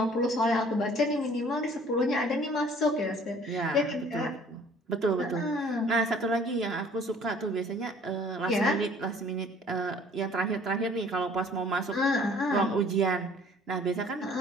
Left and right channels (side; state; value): both; normal; correlation 0.54